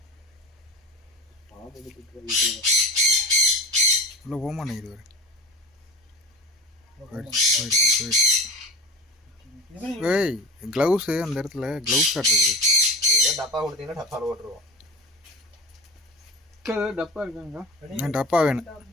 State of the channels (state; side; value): normal; both; correlation 0.30